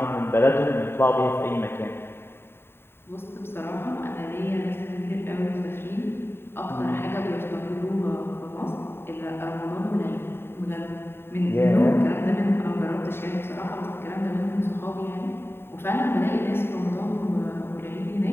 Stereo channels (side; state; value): right; late; 0.11 ms